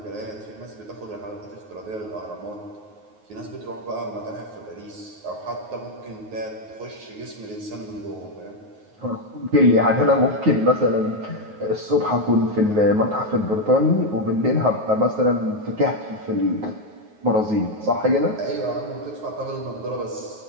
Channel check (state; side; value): late; left; 9.4 ms